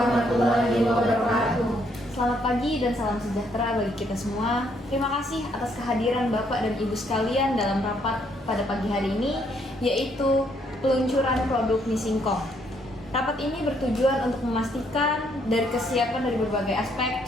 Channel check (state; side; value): normal; both; correlation 0.70